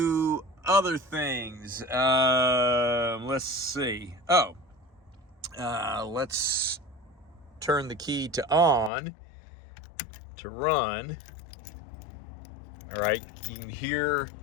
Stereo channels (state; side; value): drops out; right; at 8.9 s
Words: other things. Let's see. Let's turn the key to on to run. All right, you can